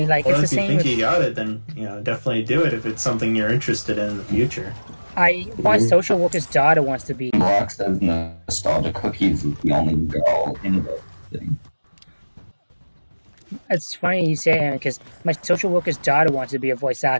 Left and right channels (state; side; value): inverted; both; correlation -1.00